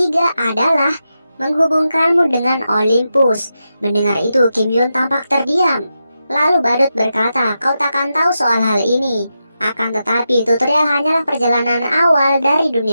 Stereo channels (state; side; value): inverted; both; correlation -0.88